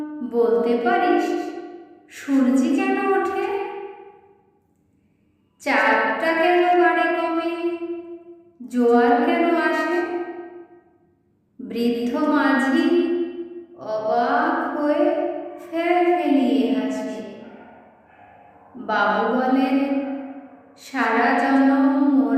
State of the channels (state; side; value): identical; both; correlation 1.00